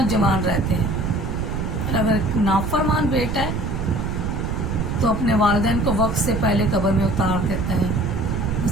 जवान रहते हैं। और अगर एक नाफरमान बेटा है तो अपने वालिदैन को वक्त से पहले कब्र में उतार देता है,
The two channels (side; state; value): right; noise; rumble, 2 dB below the sound